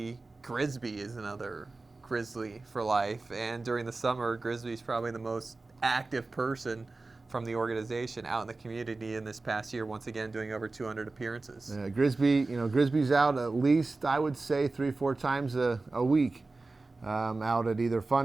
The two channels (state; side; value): quieter; left; 3.5 dB